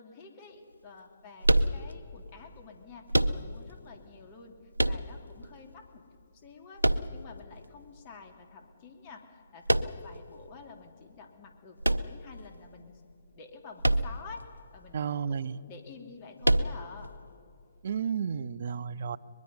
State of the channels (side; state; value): both; inverted; correlation -0.94